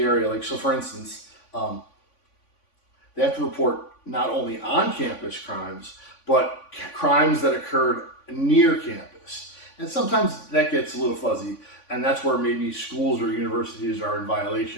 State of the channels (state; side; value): late; right; 3.5 ms